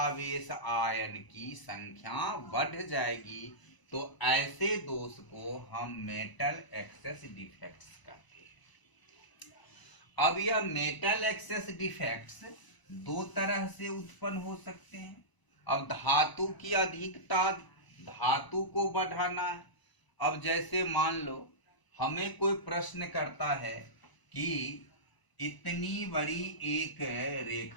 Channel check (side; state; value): right; late; 1.0 ms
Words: आयन की संख्या बढ़ जाएगी, तो ऐसे दोष को हम मेटल एक्सेस डिफेक्ट्स कहते हैं। अब यह मेटल एक्सेस डिफेक्ट्स दो तरह से उत्पन्न हो सकते हैं। अब धातु की अधिकता, धातु को बढ़ाना है। अब जैसे मान लो हमें कोई प्रश्न करता है कि इतनी बड़ी एक